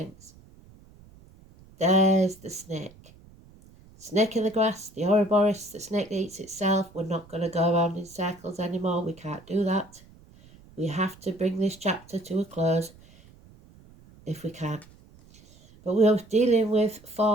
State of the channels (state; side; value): noise; right; rumble, 24 dB below the sound